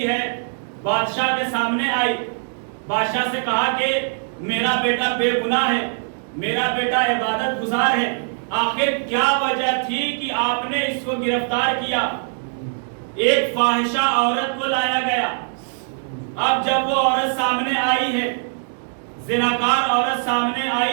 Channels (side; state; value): left; silent; digital silence